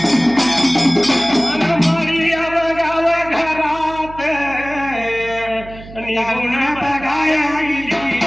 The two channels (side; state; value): right; noise; hum, 17 dB below the sound